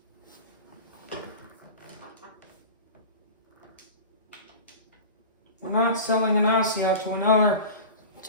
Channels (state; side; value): inverted; both; correlation -0.33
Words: We're not selling Inacio to